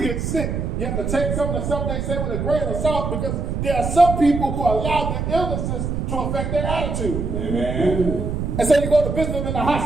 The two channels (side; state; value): right; noise; rumble, 2 dB below the sound